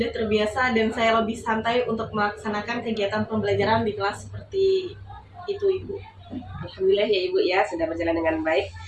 terbiasa dan saya lebih santai untuk melaksanakan kegiatan pembelajaran di kelas seperti itu, Ibu. Alhamdulillah ya Ibu ya, sudah berjalan dengan baik.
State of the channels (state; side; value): identical; both; correlation 1.00